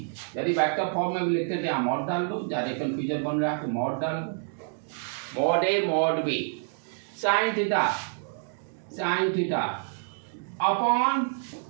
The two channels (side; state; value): left; silent; digital silence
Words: यदि वेक्टर फॉर्म में भी लिखते थे यहाँ मॉड डाल दो, ज़्यादा कंफ्यूजन बन रहा है तो मॉड डाल दो, mod A mod B sine theta upon